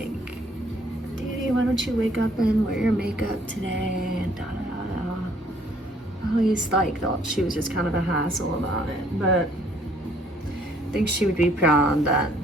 Daddy, why don't you wake up and wear your makeup today? And I always thought she was just kind of a hassle about it, but I think she would be proud that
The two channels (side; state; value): both; normal; correlation 0.62